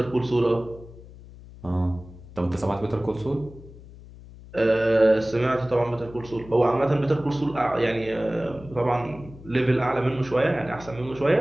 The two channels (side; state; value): left; noise; hum, 18 dB below the sound